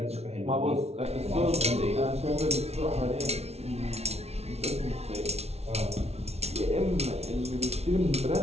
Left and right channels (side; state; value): left; late; 0.31 ms